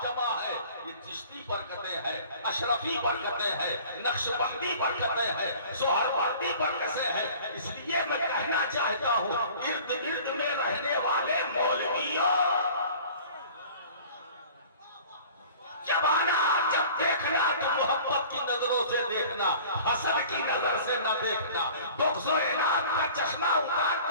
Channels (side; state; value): both; inverted; correlation -0.46